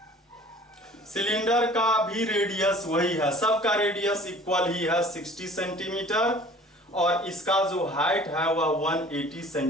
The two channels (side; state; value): both; normal; correlation 0.48